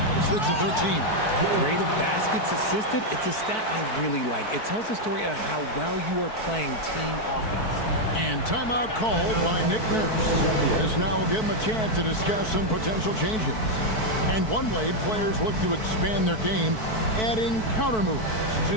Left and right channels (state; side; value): late; right; 4.6 ms